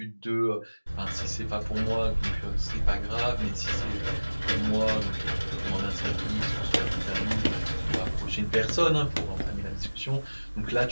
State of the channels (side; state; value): both; inverted; correlation -1.00